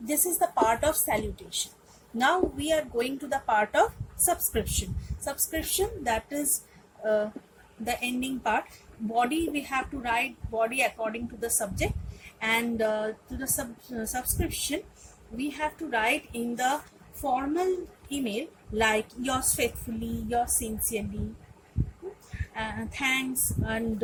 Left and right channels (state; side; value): identical; both; correlation 1.00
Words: is the part of salutation. Now we are going to the part of subscription. That is the ending part. Body, we have to write body according to the subject, and to the subscription we have to write in the formal email like yours faithfully, yours sincerely, thanks, and